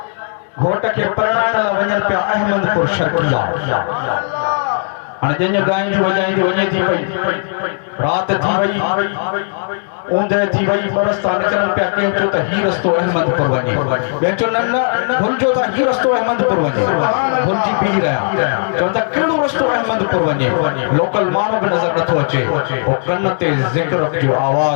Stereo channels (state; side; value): silent; right; digital silence